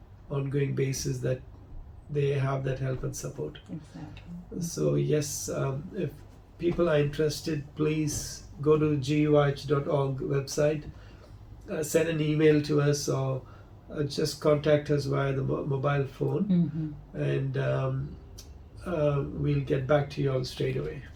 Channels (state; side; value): identical; both; correlation 1.00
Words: ongoing basis that they have that help and support. Exactly. So yes, if people are interested, please go to GUIH.org website, send an email to us, or just contact us via the mobile phone, and we'll get back to you all straight away.